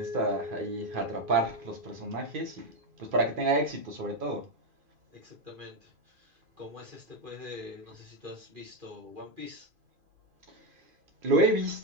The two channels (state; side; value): late; left; 2.5 ms